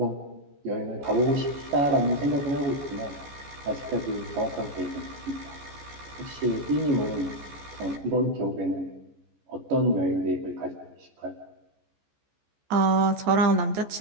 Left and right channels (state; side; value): late; left; 14 ms